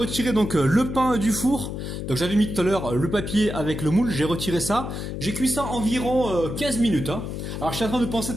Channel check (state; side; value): noise; left; hum, 6 dB below the sound